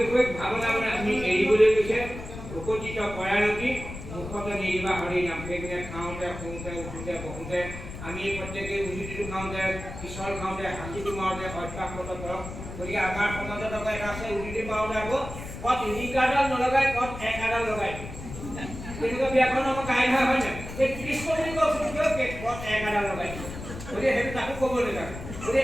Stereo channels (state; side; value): noise; left; rumble, 10 dB below the sound